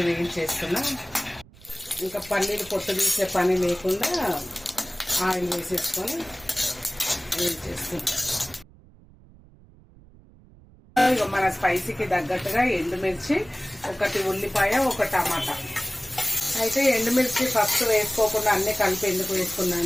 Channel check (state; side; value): noise; right; rumble, 25 dB below the sound